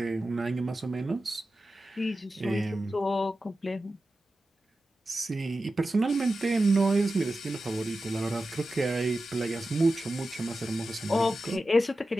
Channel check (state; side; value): normal; both; correlation 0.93